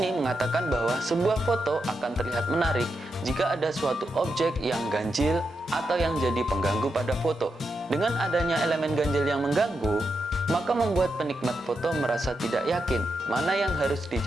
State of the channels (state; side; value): normal; both; correlation 0.85